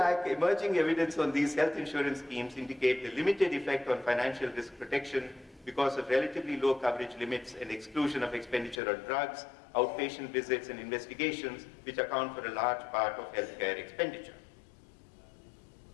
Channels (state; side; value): drops out; right; at 8.8 s